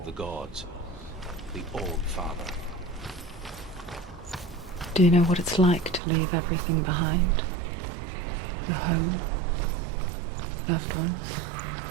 the gods, the All-Father. Do you know what it's like to leave everything behind? Your home, loved ones,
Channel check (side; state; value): left; drops out; at 6.0 s